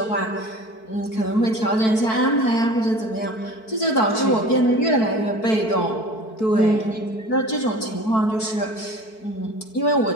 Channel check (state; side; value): late; right; 4.6 ms